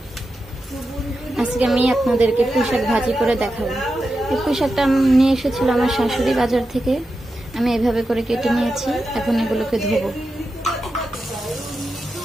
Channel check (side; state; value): both; normal; correlation 0.90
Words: আজকে আমি আপনাদেরকে পুঁইশাক ভাজি করে দেখাবো। এই পুঁইশাকটা আমি নিয়ে এসেছিল আমার শাশুড়ি বাজার থেকে। আমি এভাবে করে কেটে নিয়েছি। এখন এগুলোকে ধুবো।